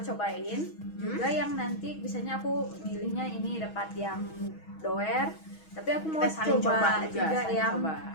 cobain juga yang nanti biasanya aku milihnya ini dapat yang doer, tapi aku mau coba juga yang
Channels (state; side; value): late; right; 6.3 ms